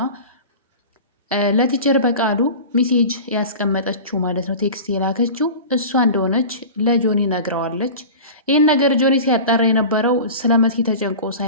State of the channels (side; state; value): both; inverted; correlation -0.34